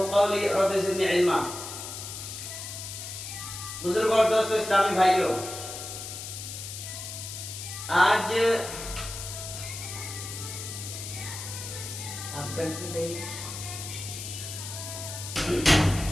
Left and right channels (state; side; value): noise; left; hiss, 8 dB below the sound